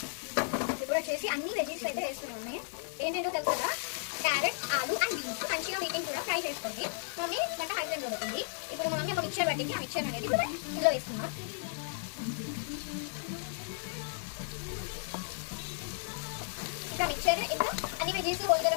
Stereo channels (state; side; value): silent; right; digital silence